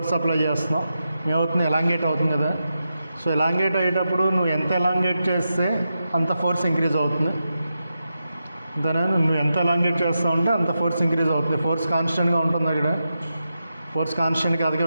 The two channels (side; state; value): both; inverted; correlation -0.89